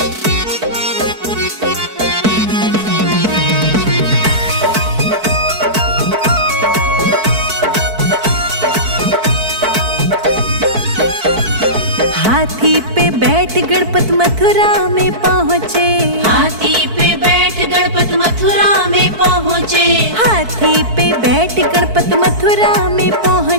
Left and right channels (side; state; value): left; late; 4.6 ms